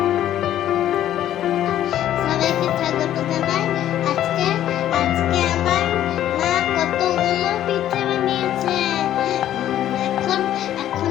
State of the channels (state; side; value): quieter; right; 11.9 dB